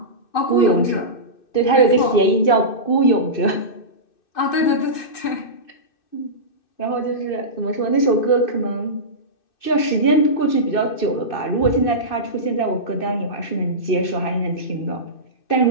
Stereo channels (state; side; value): late; right; 2.6 ms